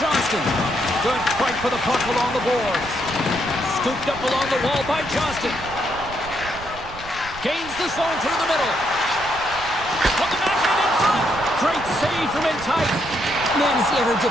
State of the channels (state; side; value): noise; right; rumble, 15 dB below the sound